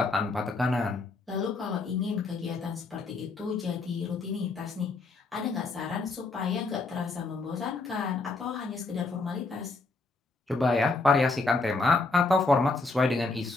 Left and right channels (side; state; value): right; quieter; 3.6 dB